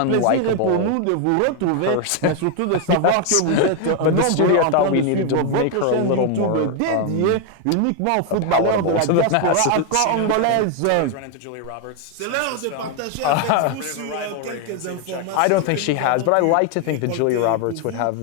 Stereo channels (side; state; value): both; different; correlation 0.01